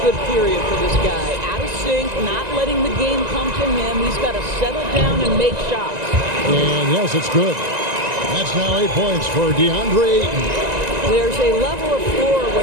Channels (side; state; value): left; late; 1.9 ms